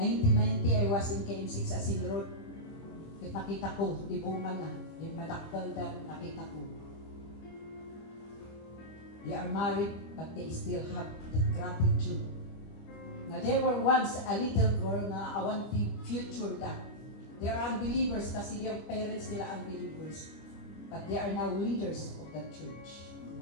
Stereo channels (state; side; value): late; right; 25 ms